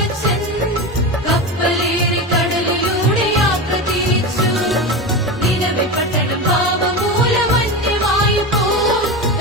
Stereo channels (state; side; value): normal; both; correlation 0.21